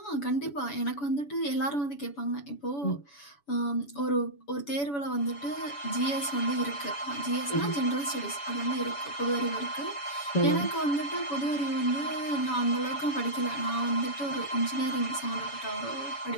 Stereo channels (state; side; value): late; right; 7.0 ms